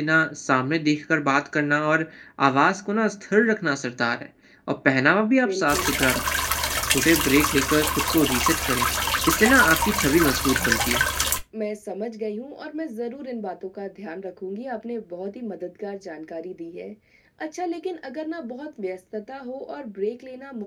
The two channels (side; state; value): both; identical; correlation 1.00